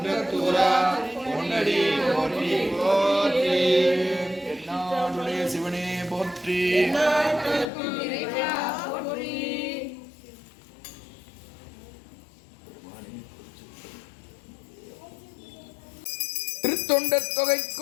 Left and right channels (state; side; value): drops out; right; at 7.7 s